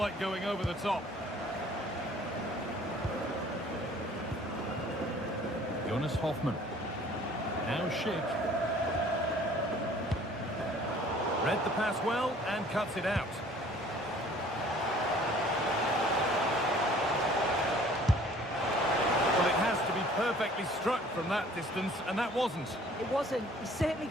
going over the top. Jonas Hoffman. Now Schick. Read the pass well and cuts it out. Well, it has to be perfectly struck from that distance, and that wasn't. It wasn't. He certainly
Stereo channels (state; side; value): normal; both; correlation 0.53